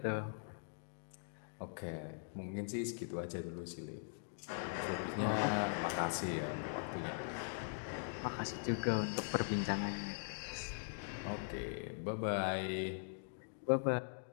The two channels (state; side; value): silent; right; digital silence